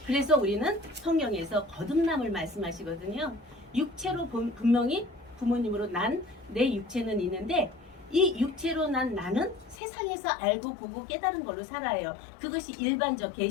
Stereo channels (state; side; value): drops out; right; at 9.8 s